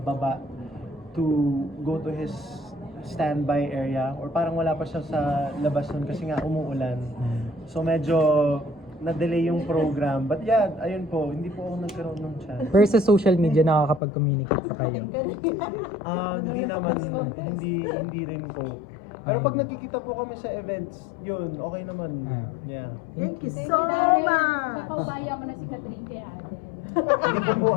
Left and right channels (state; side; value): drops out; right; at 14.0 s